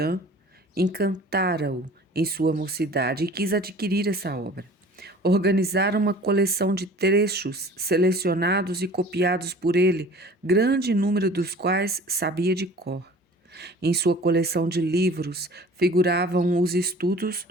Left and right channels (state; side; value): normal; both; correlation 0.45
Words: encantara-o em sua mocidade e quis adquirir essa obra. Organizaram uma coleção de trechos selecionados e copiados por ele, grande número dos quais sabia de cor. Em sua coleção de livros figuravam os estudos